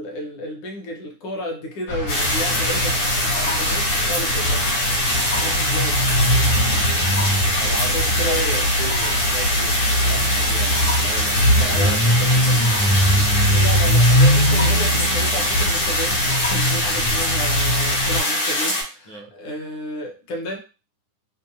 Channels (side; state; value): right; late; 9.8 ms